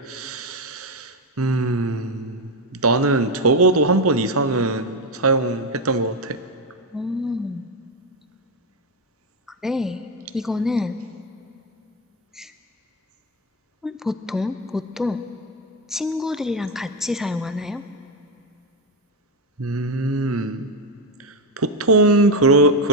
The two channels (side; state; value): both; normal; correlation 0.09